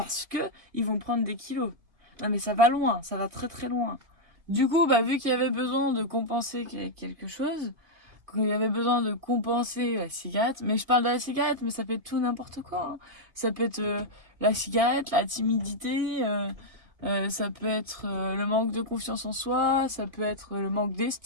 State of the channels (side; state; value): left; late; 1.8 ms